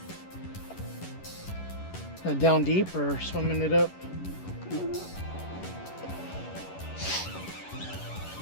Down deep or swimming it up?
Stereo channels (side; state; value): right; late; 11 ms